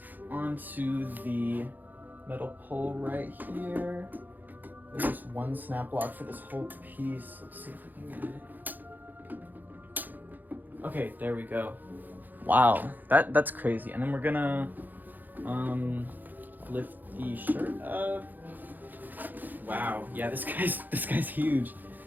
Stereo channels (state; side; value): late; left; 0.086 ms